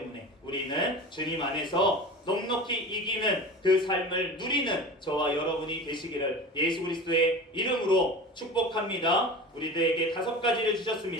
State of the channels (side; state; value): both; normal; correlation 0.33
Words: 우리는 주님 안에서 넉넉히 이기는 그 삶을 누리는 저와 여러분이 되시기를 예수 그리스도의 이름으로 축복합니다. 우리들에게 5가지를